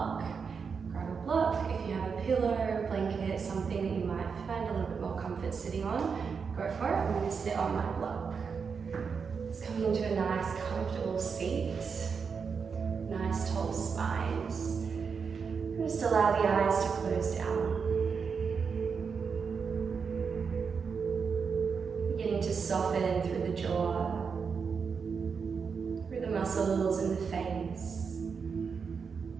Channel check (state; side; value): quieter; left; 5.8 dB